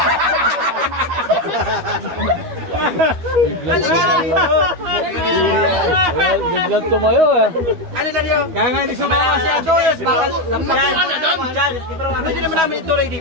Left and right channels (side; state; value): left; late; 12 ms